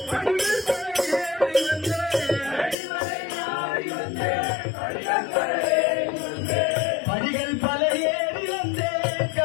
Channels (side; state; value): right; drops out; at 2.8 s